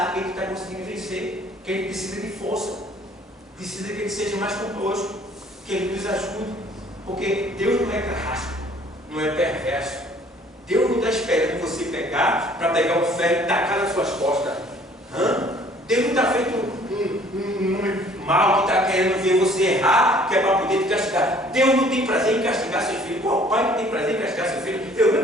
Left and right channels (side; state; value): both; normal; correlation 0.56